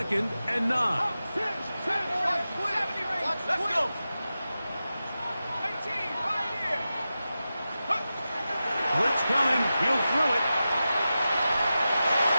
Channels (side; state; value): both; inverted; correlation -0.93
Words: and 9. Let's go. 18, right here. Blitz coming. He'll throw it.